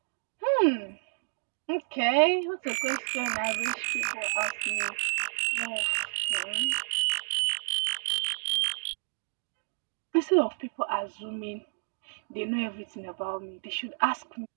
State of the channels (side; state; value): left; silent; digital silence